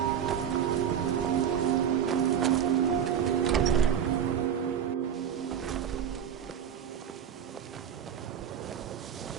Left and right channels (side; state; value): left; quieter; 8.8 dB